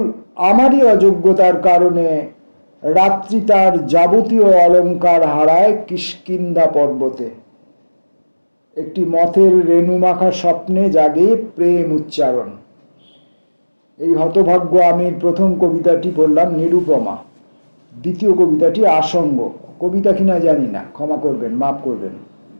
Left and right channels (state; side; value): inverted; both; correlation -1.00